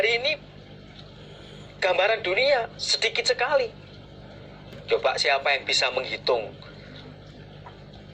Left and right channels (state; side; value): identical; both; correlation 1.00